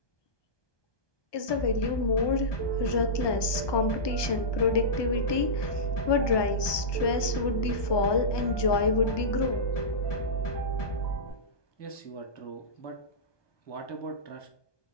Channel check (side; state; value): right; late; 1.2 ms